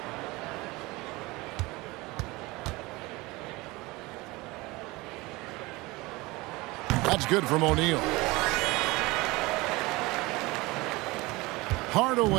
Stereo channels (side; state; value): left; quieter; 22.3 dB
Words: That's good from O'Neal.